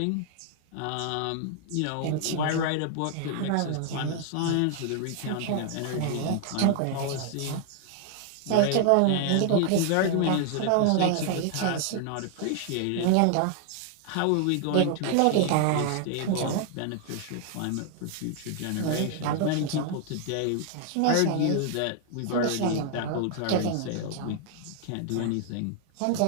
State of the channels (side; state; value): both; different; correlation 0.00